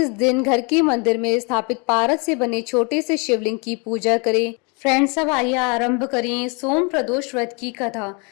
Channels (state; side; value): quieter; right; 32.3 dB